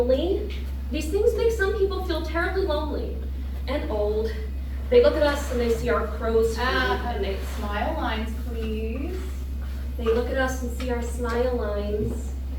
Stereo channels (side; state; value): both; identical; correlation 1.00